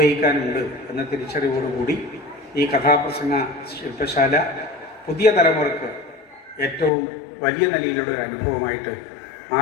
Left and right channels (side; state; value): right; drops out; at 6.9 s